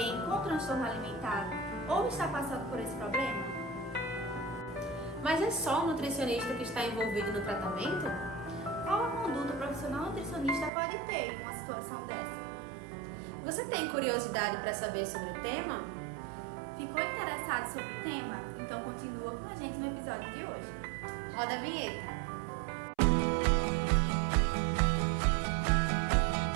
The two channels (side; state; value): left; drops out; at 10.7 s